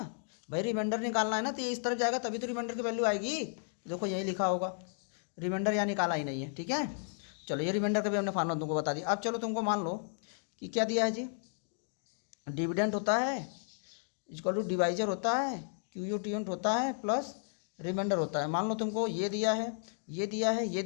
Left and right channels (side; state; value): right; silent; 55 dB below the other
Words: भाई, रिमाइंडर निकालना है ना तो ये इस तरफ जाएगा तभी तो रिमाइंडर की वैल्यू आएगी। देखो यही लिखा होगा, रिमाइंडर यहाँ निकाला ही नहीं है, ठीक है। चलो ये रिमाइंडर का भी हमने फार्मूला तुमको बता दिया। अब चलो तुमको मान लो कि क्या दिया है जी, डिविडेंड होता है इक्वल टू डिवाइजर होता है, QU10 होता है, प्लस रिमाइंडर होता है। मान लो तुमको ये दिया है, ये दिया है, ये